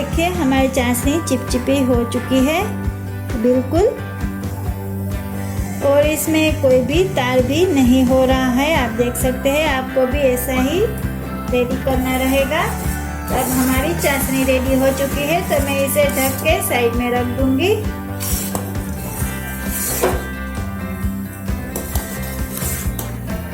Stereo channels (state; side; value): identical; both; correlation 1.00